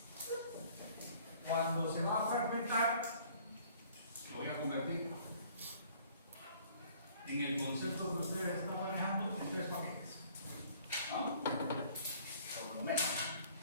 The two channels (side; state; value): both; inverted; correlation -0.56